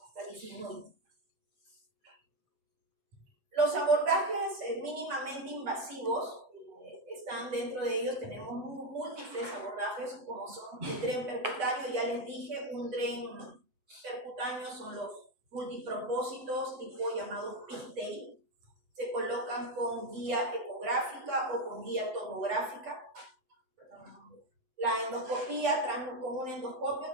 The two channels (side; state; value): left; late; 8.2 ms